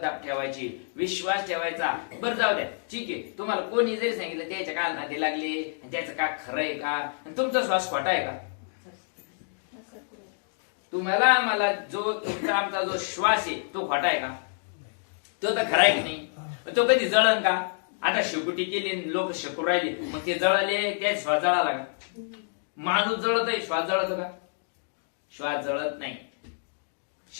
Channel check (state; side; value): silent; right; digital silence